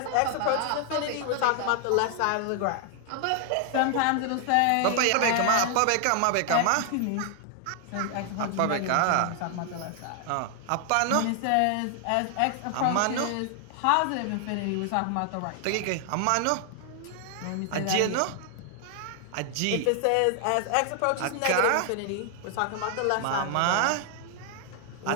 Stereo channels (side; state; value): both; different; correlation 0.00